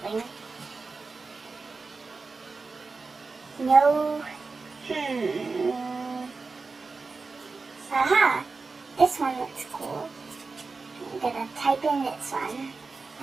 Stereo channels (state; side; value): quieter; left; 4.1 dB